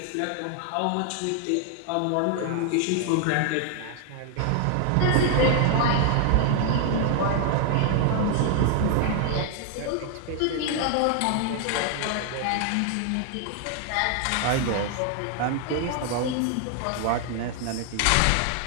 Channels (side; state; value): both; different; correlation 0.00